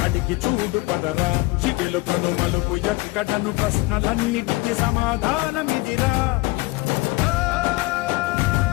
అడిగి చూడు పదరా చిగెలు కను మలుపు ఎక్కడను ప్రశ్నలన్నిటికీ సమాధానమిదిరా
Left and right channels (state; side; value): quieter; right; 22.0 dB